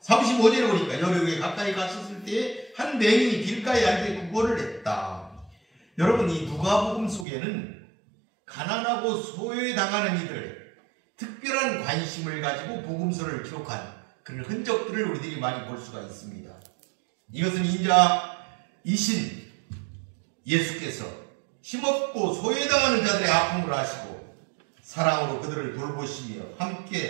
35절에 보니까 여리고에 가까이 갔었을 때 한 맹인이 길가에 앉아 구걸을 했다. 여러분 이 누가복음 속에는 가난하고 소외당하는 이들 특별한 관심을 가지고 복음서를 기록한 그런 흔적들을 우리들이 많이 볼 수가 있습니다. 이것은 인자이신 예수께서 힘없고 소외당하는 자들의 아픔을 아시고 사랑으로 그들을 돌보시며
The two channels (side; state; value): left; drops out; at 7.2 s